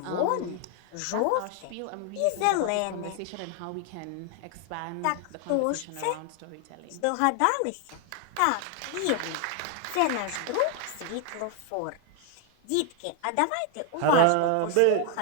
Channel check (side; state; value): both; different; correlation 0.00